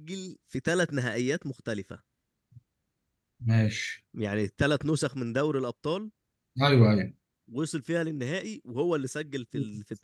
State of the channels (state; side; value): identical; both; correlation 1.00